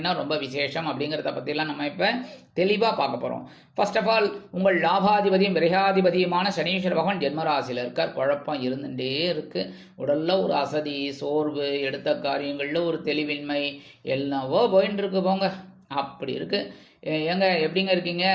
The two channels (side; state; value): both; identical; correlation 1.00